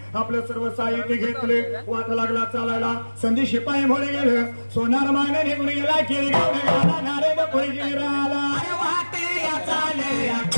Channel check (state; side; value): inverted; both; correlation -1.00